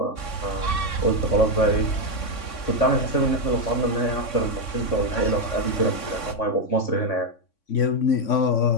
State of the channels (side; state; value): right; late; 3.6 ms